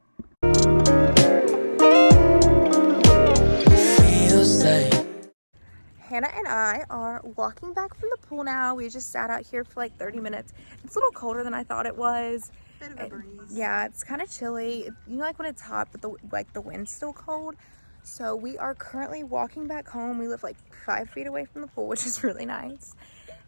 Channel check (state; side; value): inverted; both; correlation -1.00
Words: Hannah and I are walking back from the pool now. We just sat out here for like 30 minutes. It's a little colder than I thought it was. Bit of a breeze. Yeah, it's kind of chilly. You know, like when it's hot, but the wind's still cold. So we are currently walking back home. We live like 5 feet away from the pool, which is really nice.